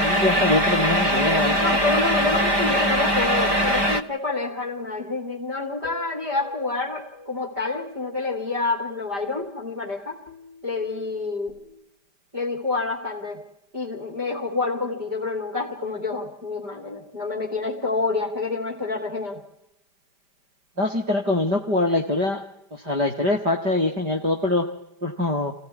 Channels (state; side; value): late; left; 5.0 ms